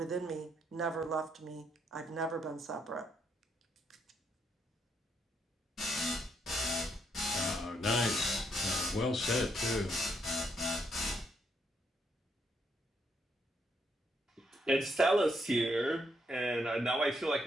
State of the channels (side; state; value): both; normal; correlation 0.75